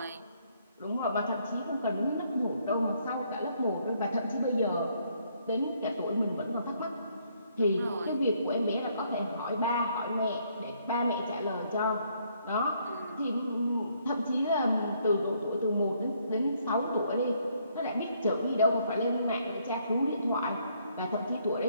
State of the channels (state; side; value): inverted; both; correlation -0.69